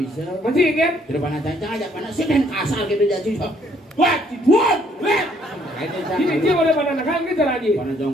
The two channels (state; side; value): normal; both; correlation 0.65